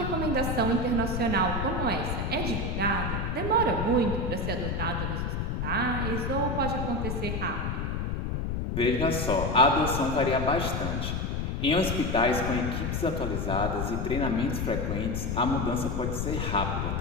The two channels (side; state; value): left; noise; rumble, 1 dB below the sound